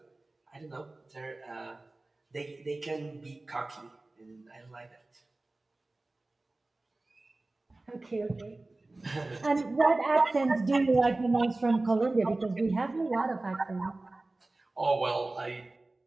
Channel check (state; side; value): quieter; left; 3.0 dB